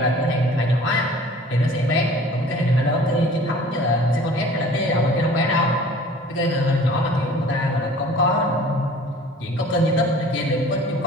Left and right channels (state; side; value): normal; both; correlation 0.47